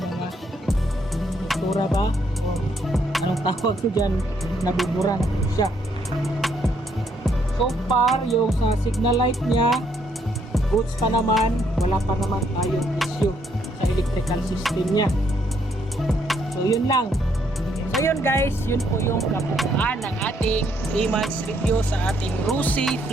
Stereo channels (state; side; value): normal; both; correlation 0.71